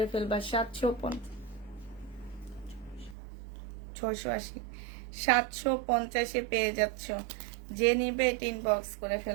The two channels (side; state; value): left; drops out; at 3.2 s